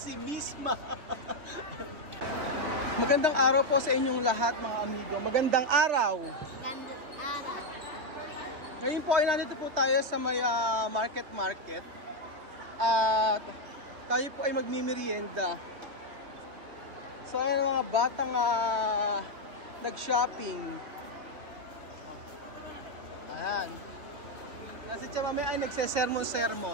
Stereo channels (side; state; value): left; late; 3.0 ms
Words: Misma. Magandang araw po sa inyong lahat mga amigo. Magandang araw. Ngayon po ay nandito po tayo sa may market. At tayo po ay magmimerienda. So ayan mga batang nag-shopping. Ayan. Kasi siya mamaya ay